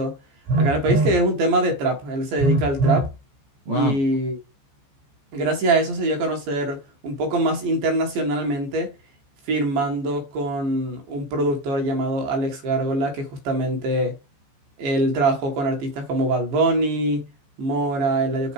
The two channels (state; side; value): late; left; 14 ms